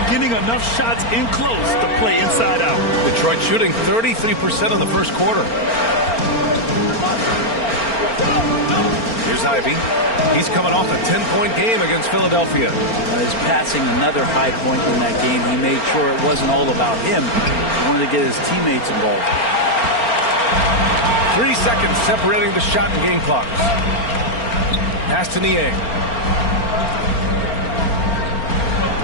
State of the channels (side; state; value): right; late; 4.4 ms